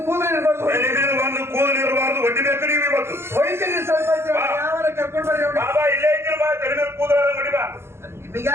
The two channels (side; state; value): left; late; 0.12 ms